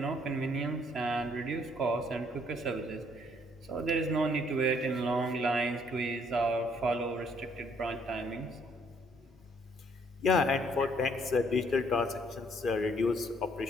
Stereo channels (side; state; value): both; normal; correlation 0.66